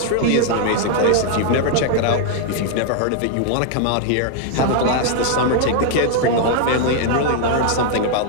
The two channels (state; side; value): different; both; correlation 0.00